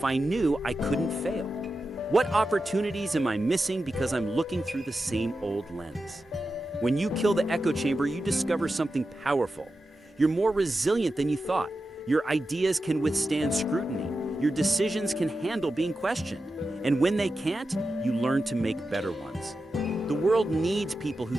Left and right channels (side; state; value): both; normal; correlation 0.91